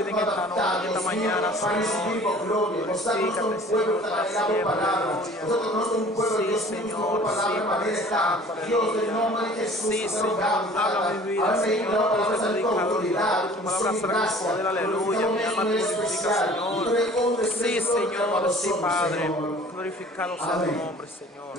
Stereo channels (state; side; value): normal; both; correlation 0.48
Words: vida en esta noche, esta mañana, para recibir Señor. gloria. Nosotros somos un pueblo que ha palabra. Nosotros no somos un pueblo, Dios mío, palabra manera está. Dios, del nombre de Jesús, sí, Señor, habla mi vida, Señor, palabra predicadora, tu palabra será con poder, aleluya, mi alma te glorifica, Señor. Sí, Señor, sí, Padre, glorificado sea tu nombre, Señor.